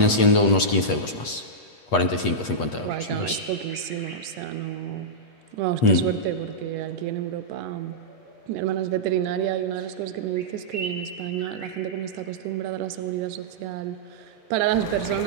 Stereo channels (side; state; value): right; late; 8.3 ms